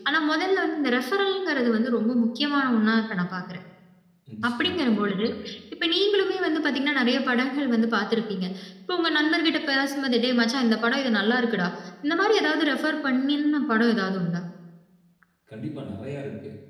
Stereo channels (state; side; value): identical; both; correlation 1.00